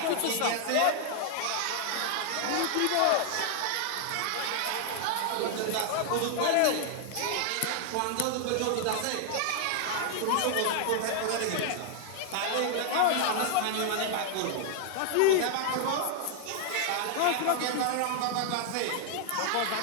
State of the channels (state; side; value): different; both; correlation 0.00